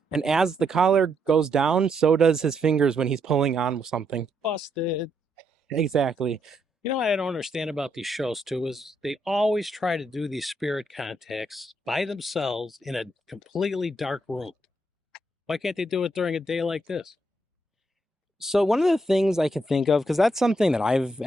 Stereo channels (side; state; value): both; normal; correlation 0.77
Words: And as the collar goes down, so does his fingers when he's pulling on something. Busted. Exactly. You know what I don't understand about these shows too is they always try to do these spirit contacts by themselves in a completely dark room. Why can't they do it during a day like this? So one of the things I can think of, because that's something that I've